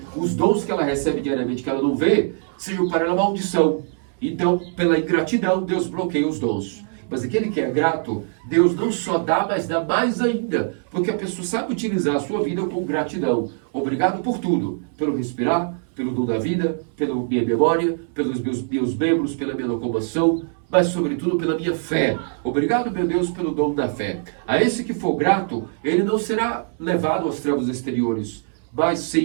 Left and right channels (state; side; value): silent; left; 64 dB below the other